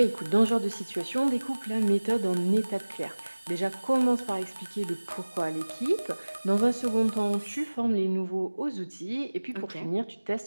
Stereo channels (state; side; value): inverted; both; correlation -1.00